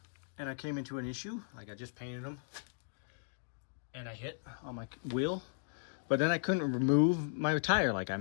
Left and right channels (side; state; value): right; silent; digital silence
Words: And I came into an issue, like I just painted them and I hit on my wheel, but then I couldn't remove my tire. Like I